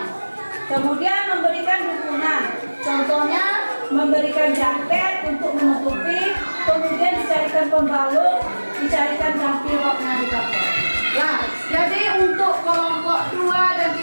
Kemudian memberikan dukungan. Contohnya memberikan jaket untuk menutupi, kemudian dicarikan pembalut, dicarikan jampi roknya di kapal. Nah, jadi untuk kelompok 2 dan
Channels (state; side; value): inverted; both; correlation -1.00